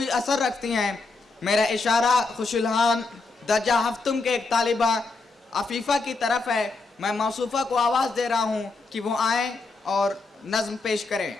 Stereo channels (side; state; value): right; quieter; 3.7 dB